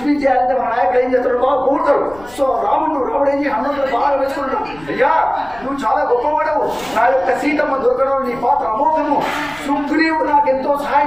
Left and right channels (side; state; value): left; noise; rumble, 22 dB below the sound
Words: చేయాలంటే మన నాయకులు ఏం చేస్తాడు, బాగా కోరుతారు. సో రాముడు ఏం హనుమంతుడు బాగా వేసుకుంటాడు, అయ్యా నువ్వు చాలా గొప్పవాడవు, నా యొక్క సీతమ్మ దొరకడం నీ పాత్ర అమోఘము, సుగ్రీవుడు నాకు ఎంతో